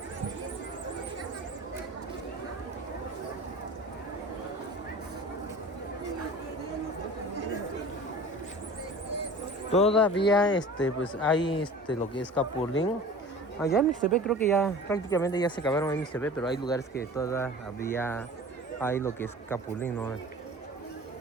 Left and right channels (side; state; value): both; normal; correlation 0.40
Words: Todavía pues hay lo que es capulín. Allá en Mixtepec creo que ya prácticamente ya se acabaron en Mixtepec, pero hay lugares que todavía hay lo que es capulín, ¿no?